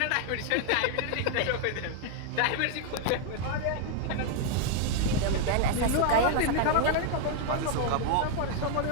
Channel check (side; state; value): both; different; correlation 0.00